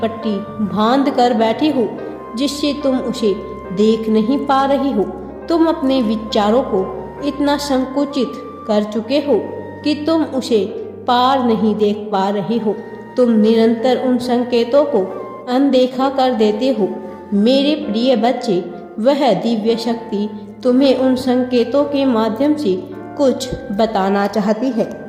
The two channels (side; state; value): both; identical; correlation 1.00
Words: बांध कर बैठे हो जिससे तुम उसे देख नहीं पा रही हो। तुम अपने विचारों को इतना संकुचित कर चुके हो कि तुम उसे पार नहीं देख पा रहे हो। तुम निरंतर उन संकेतों को अनदेखा कर देते हो। मेरे प्रिय बच्चे, वह दिव्य शक्ति तुम्हें उन संकेतों के माध्यम से कुछ बताना चाहती है।